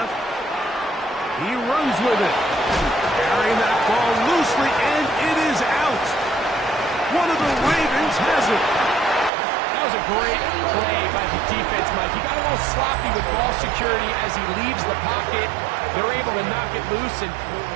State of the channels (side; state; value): left; drops out; at 9.3 s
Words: He runs with it. Carrying that ball loosely, and it is out. One of the Ravens has it. That was a great play by the defense, Mike. He got a little sloppy with ball security as he leaves the pocket. They're able to knock it loose and